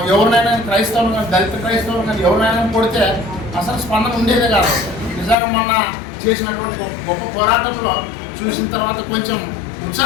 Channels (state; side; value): drops out; right; at 5.4 s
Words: ఎవరినైనా క్రైస్తవులు కానీ దళిత క్రైస్తవులు కానీ ఎవరినైనా కొడితే అసలు స్పందన ఉండేదే కాదు. నిజంగా మొన్న చేసినటువంటి గొప్ప పోరాటంలో చూసిన తర్వాత కొంచెం